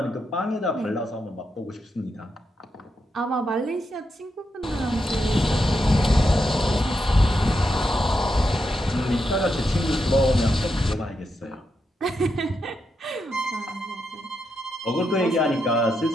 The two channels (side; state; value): both; normal; correlation 0.84